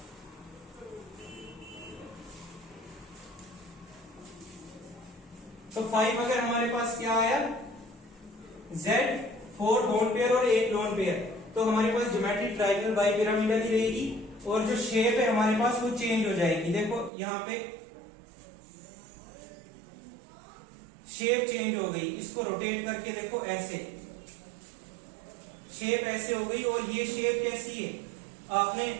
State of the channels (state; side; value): drops out; left; at 17.1 s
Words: तो 5 अगर हमारे पास क्या आया? Z4 बॉन्ड पेयर और 1 लोन पेयर, तो हमारे पास ज्योमेट्री ट्राइगोनल बाइपिरामिडल ही रहेगी, और जो शेप है हमारे पास वो चेंज हो जाएगी। देखो यहाँ पे शेप चेंज हो गई, इसको रोटेट करके देखो, ऐसे शेप ऐसे हो गई। और ये शेप कैसी है? आपने